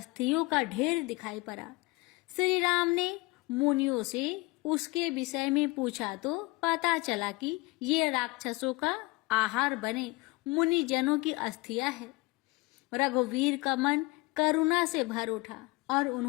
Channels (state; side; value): quieter; right; 22.8 dB